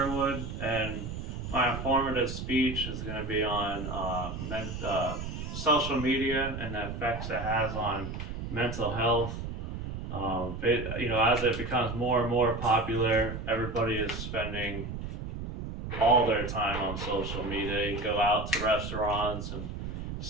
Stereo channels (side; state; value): right; noise; rumble, 6 dB below the sound